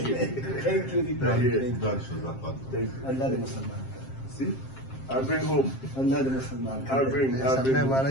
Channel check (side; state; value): right; late; 7.5 ms